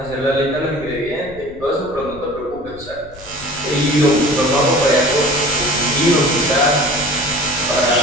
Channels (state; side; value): noise; left; rumble, 20 dB below the sound